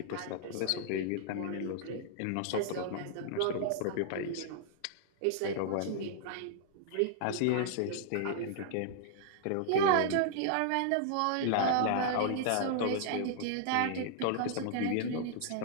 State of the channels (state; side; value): different; both; correlation -0.01